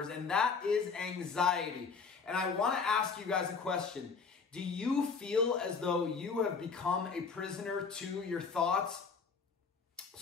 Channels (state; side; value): quieter; right; 5.3 dB